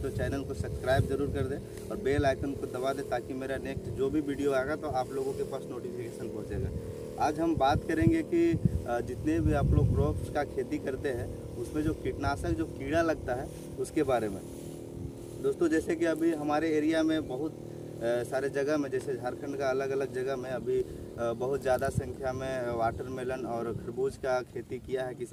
तो चैनल को सब्सक्राइब जरूर कर दें और बेल आइकन को दबा दें ताकि मेरा नेक्स्ट जो भी वीडियो आएगा तो आप लोगों के पास नोटिफिकेशन पहुंचेगा। आज हम बात करेंगे कि जितने भी आप लोग क्रॉप्स का खेती करते हैं उसमें जो कीटनाशक जो कीड़ा लगता है उसके बारे में। दोस्तों, जैसे कि अभी हमारे एरिया में बहुत सारे जगह में, जैसे झारखंड का अलग अलग जगह में अभी बहुत ज़्यादा संख्या में वाटरमेलन और खरबूज का खेती किया है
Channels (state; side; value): identical; both; correlation 1.00